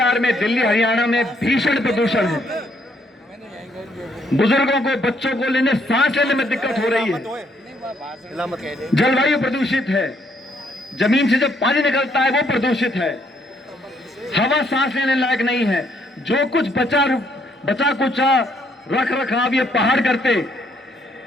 में, दिल्ली हरियाणा में भीषण प्रदूषण है। बुजुर्गों को, बच्चों को लेने, सांस लेने में दिक्कत हो रही है। जलवायु प्रदूषित है, जमीन से जब पानी निकलता है वो प्रदूषित है, हवा सांस लेने लायक नहीं है। जो कुछ बचा कुचा रख रखाव ये पहाड़ करते,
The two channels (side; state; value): both; normal; correlation 0.70